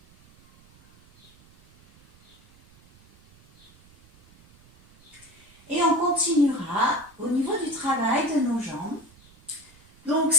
Et on continuera au niveau du travail de nos jambes. Donc,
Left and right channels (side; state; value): right; noise; rumble, 28 dB below the sound